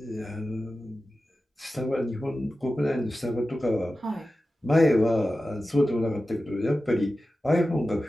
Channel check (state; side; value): normal; both; correlation 0.94